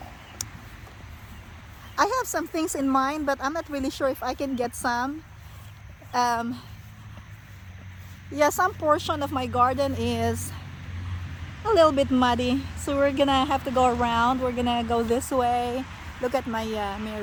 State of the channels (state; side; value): identical; both; correlation 1.00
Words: I have some things in mind, but I'm not really sure if I can get some. Yeah, some portion of my garden is a little bit muddy, so we're gonna have to go around. We're gonna go this way. Look at my